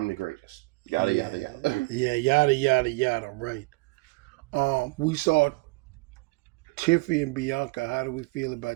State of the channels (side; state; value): left; quieter; 25.5 dB